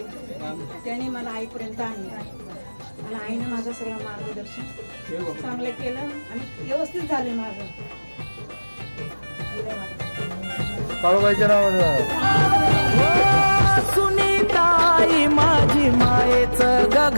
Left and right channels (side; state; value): both; inverted; correlation -1.00